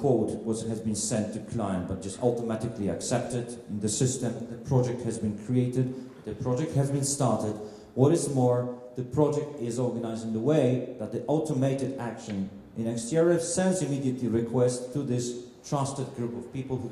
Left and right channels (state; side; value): identical; both; correlation 1.00